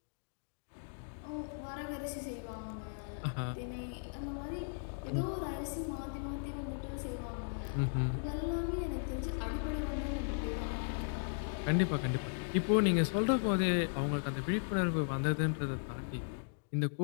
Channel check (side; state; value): right; silent; digital silence